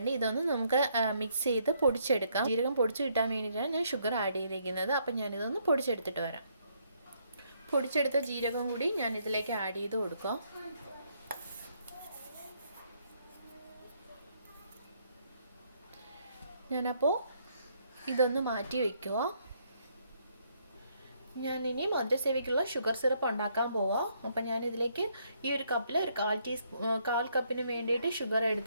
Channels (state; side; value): inverted; both; correlation -0.71